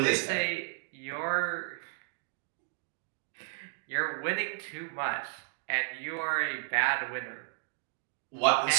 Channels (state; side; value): silent; left; digital silence